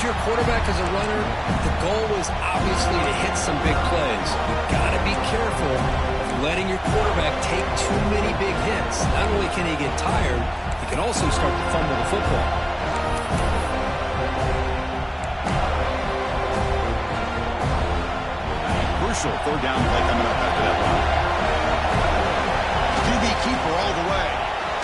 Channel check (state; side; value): identical; both; correlation 1.00